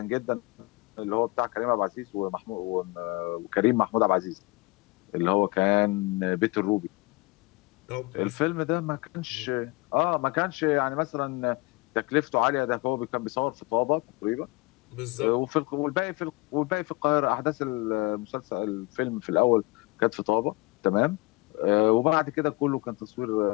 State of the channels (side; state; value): right; quieter; 24.8 dB